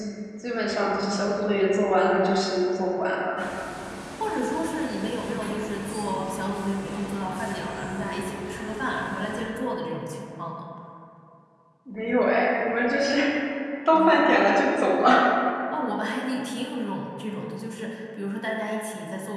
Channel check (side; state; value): both; identical; correlation 1.00